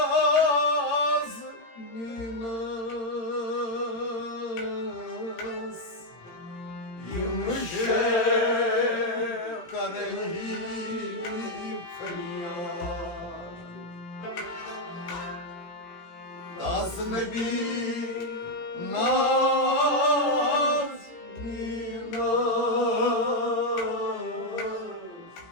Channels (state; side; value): late; right; 17 ms